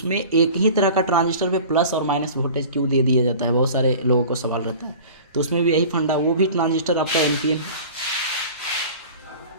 एक ही तरह का ट्रांजिस्टर पे प्लस और माइनस वोल्टेज क्यों दे दिया जाता है, बहुत सारे लोगों को सवाल रहता है। तो उसमें भी यही फंडा, वो भी ट्रांजिस्टर आपका एनपीएन है,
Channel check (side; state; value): both; inverted; correlation -0.41